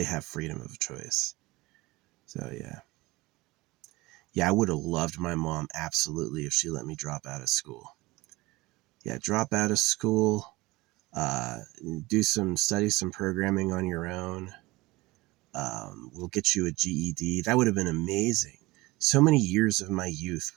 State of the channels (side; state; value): left; quieter; 21.2 dB